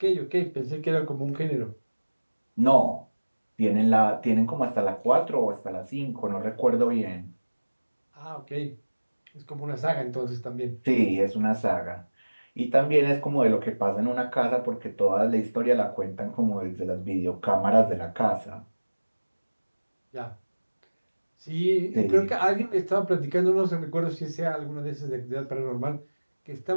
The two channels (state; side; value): inverted; both; correlation -1.00